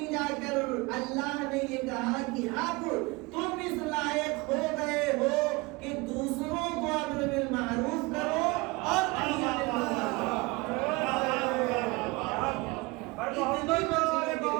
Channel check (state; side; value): quieter; left; 24.5 dB